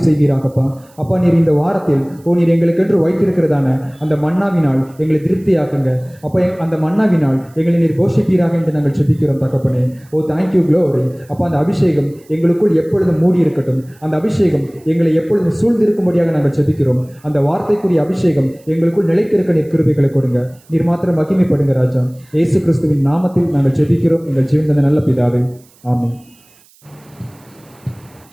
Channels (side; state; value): right; noise; hiss, 30 dB below the sound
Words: செய்வீராகப்பா. அப்பா, நீர் இந்த வாரத்தில் நீர் எங்களுக்கென்று வைத்திருக்கிறதான அந்த மன்னாவினால் எங்களை திருப்தியாக்குங்க. அப்போ அந்த மன்னாவினால் எங்களை நீர் போஷிப்பீராக என்று நாங்கள் ஜெபிக்கிறோம் தகப்பனே. ஓ தேங்க்யூ க்ளோரி. அப்போ அந்த அபிஷேகம் எங்களுக்குள் எப்பொழுதும் மூடி இருக்கட்டும். அந்த அபிஷேகம் எங்களை எப்பொழுதும் சூழ்ந்திருக்கும்படியாக நாங்கள் ஜெபிக்கிறோம். அந்த வார்த்தைக்குரிய அபிஷேகம் எங்களுக்குள் நிலைத்திருக்க நீர் கிருபைகளை கொடுங்க. நீர் மாத்திரம் மகிமைப்படுங்க ராஜா. இயேசு கிறிஸ்துவின் நாமத்தில் நாங்கள் ஜெபிக்கிறோம் எங்கள் ஜீவன் நல்ல பிதாவே, ஆமென்.